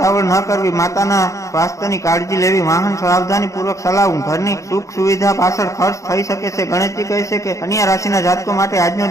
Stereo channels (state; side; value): late; right; 0.15 ms